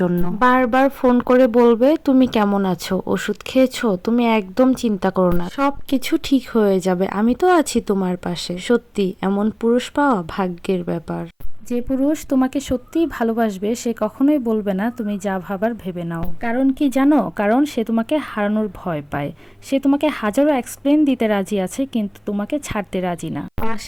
জন্য। বারবার ফোন করে বলবে তুমি কেমন আছো, ওষুধ খেয়েছো, তুমি একদম চিন্তা করো না, সব কিছু ঠিক হয়ে যাবে, আমি তো আছি তোমার পাশে। সত্যি এমন পুরুষ পাওয়া ভাগ্যের ব্যাপার। যে পুরুষ তোমাকে সত্যিই ভালোবাসবে সে কখনোই বলবে না তুমি যা ভাবার ভেবে নাও। কারণ কি জানো? কারণ সে তোমাকে হারানোর ভয় পায়। সে তোমাকে হাজারো এক্সপ্লেন দিতে রাজি আছে, কিন্তু তোমাকে ছাড়তে রাজি না।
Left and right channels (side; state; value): both; identical; correlation 1.00